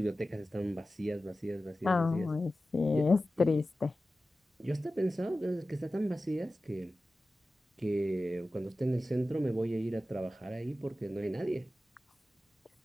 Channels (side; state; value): both; normal; correlation 0.95